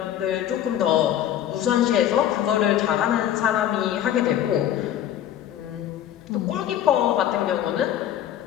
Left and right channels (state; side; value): quieter; right; 11.1 dB